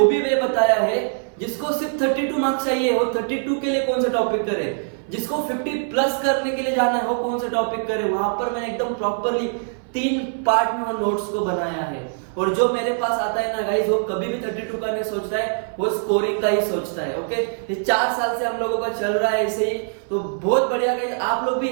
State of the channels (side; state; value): left; silent; 58 dB below the other